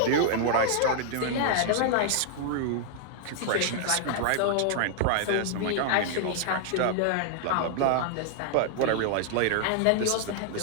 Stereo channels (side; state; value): both; different; correlation -0.01